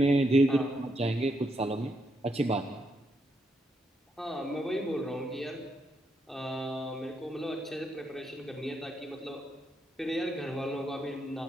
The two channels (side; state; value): both; normal; correlation 0.79